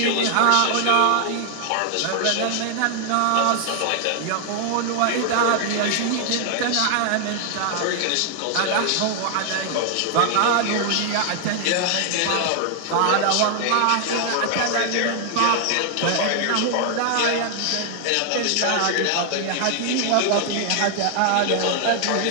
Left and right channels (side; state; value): both; different; correlation 0.00